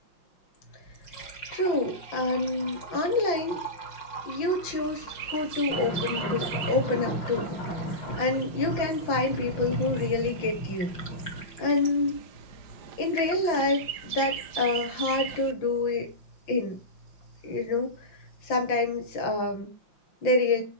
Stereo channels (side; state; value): right; late; 6.0 ms